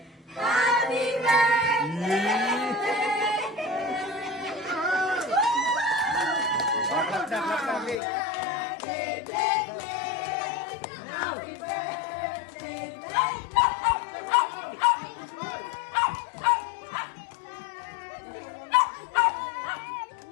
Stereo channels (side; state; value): right; drops out; at 8.0 s